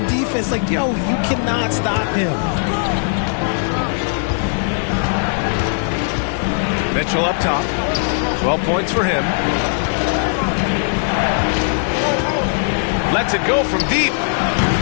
defense, like, yo, you cannot stop him. Mitchell up top. 12 points for him. Lets it go from deep.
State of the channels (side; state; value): right; silent; 57 dB below the other